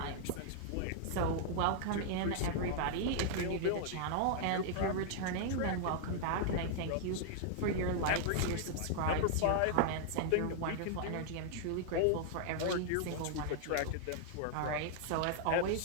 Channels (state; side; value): different; both; correlation -0.01